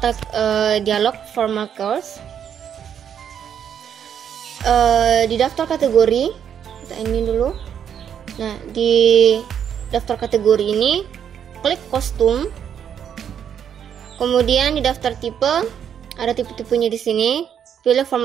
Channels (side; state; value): left; quieter; 8.6 dB